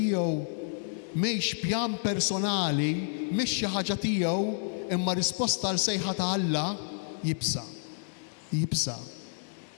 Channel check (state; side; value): silent; right; 57 dB below the other